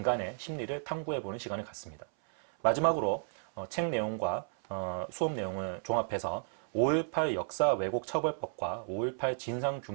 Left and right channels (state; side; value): silent; left; 56 dB below the other